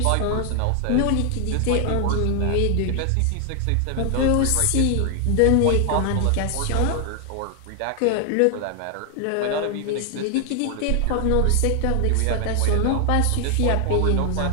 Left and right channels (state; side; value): different; both; correlation 0.00